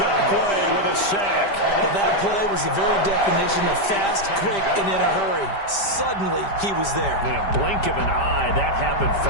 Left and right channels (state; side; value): late; right; 5.1 ms